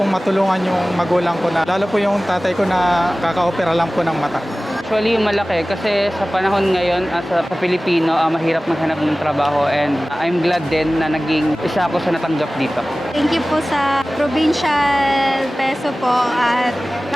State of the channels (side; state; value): both; normal; correlation 0.97